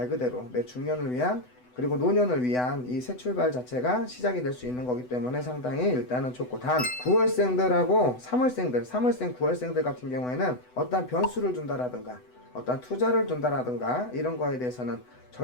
그대로 내 중년을 위한 그리고 노년을 위한 이 새 출발 자체가 시작이 될 수 있는 거기 때문에 상당히 일단은 좋고, 단 9월생들하고 3월생 9월생들 같은 경우에는 어떤 변수를 준다라든가 어떤 투자를 준다라든가 이런 거에 대해서는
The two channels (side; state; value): right; late; 8.0 ms